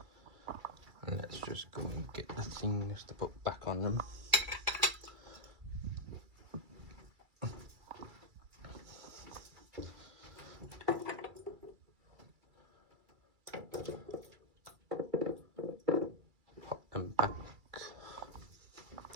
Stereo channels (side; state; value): left; late; 2.3 ms